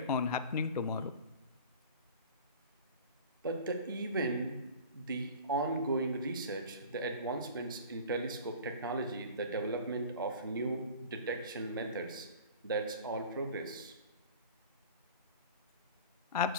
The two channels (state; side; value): inverted; both; correlation -0.40